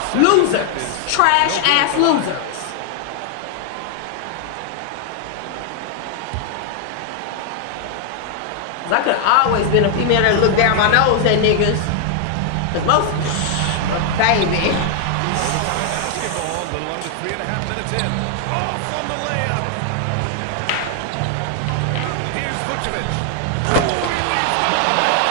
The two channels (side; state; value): both; different; correlation 0.00